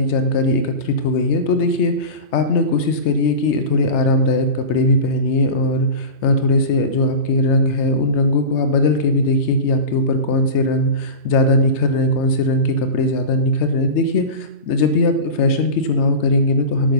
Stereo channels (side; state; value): right; late; 3.3 ms